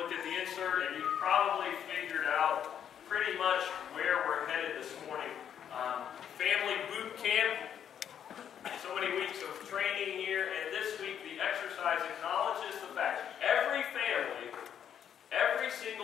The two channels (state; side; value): quieter; right; 9.0 dB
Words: at the insert, and you've probably figured out pretty much where we're headed this morning. Family boot camp, so many weeks of training here, and this week the exercise acknowledges the fact every family, every